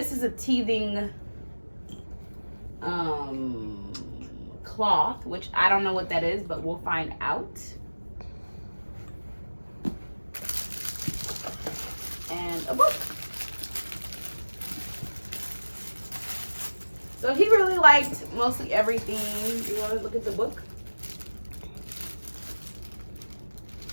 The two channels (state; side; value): inverted; both; correlation -1.00